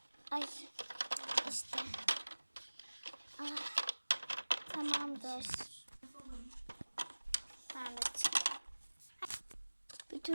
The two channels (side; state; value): both; inverted; correlation -1.00